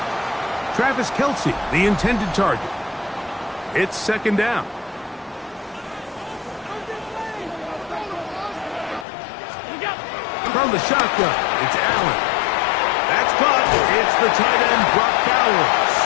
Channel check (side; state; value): right; drops out; at 9.1 s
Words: Travis Kelsey, the intended target. It's 2nd down. From the shotgun, it's Allen. That's caught. It's the tight end, Brock Bowers.